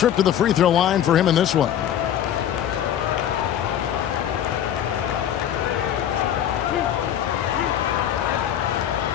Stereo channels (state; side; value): quieter; right; 10.3 dB